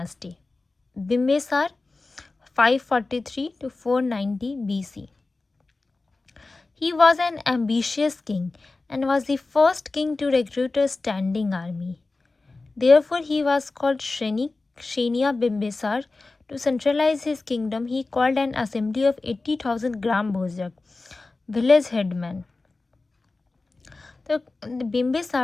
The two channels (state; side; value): quieter; right; 3.5 dB